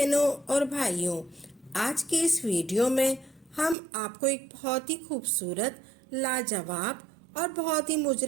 और भाइयों, आज की इस वीडियो में हम आपको एक बहुत ही खूबसूरत, लाजवाब और बहुत ही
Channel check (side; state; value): left; drops out; at 3.8 s